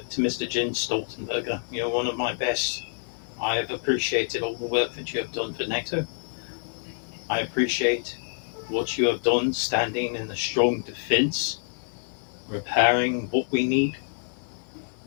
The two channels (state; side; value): silent; right; 60 dB below the other